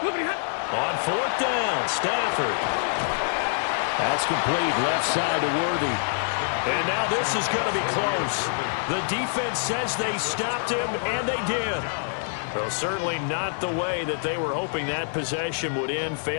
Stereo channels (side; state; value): right; silent; 61 dB below the other